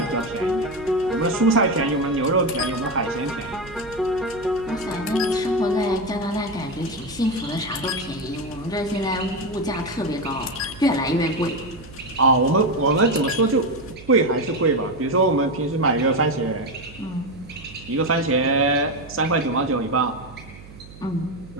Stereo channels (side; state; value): right; noise; hum, 18 dB below the sound